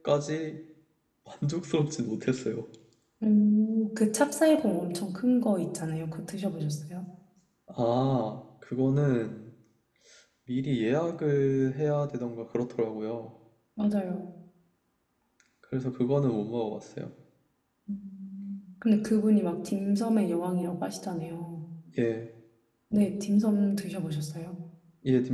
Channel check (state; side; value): identical; both; correlation 1.00